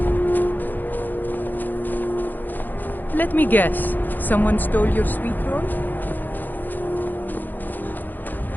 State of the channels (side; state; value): right; late; 0.087 ms